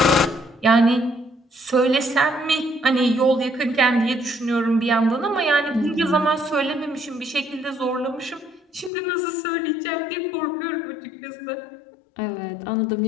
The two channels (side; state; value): right; drops out; at 8.9 s